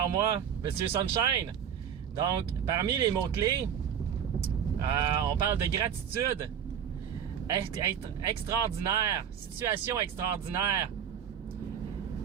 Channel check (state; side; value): quieter; left; 8.6 dB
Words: moi, Monsieur Sunshine. Donc, parmi les mots-clés, on parle de gratitude, être extraordinaire, situation extraordinaire,